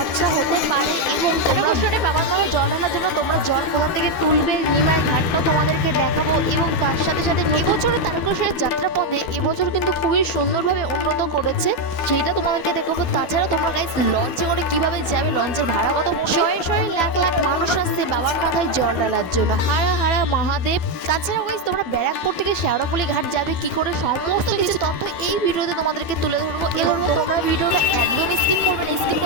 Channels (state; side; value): late; right; 12 ms